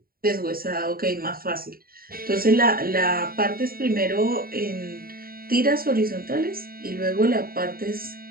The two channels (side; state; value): left; late; 0.43 ms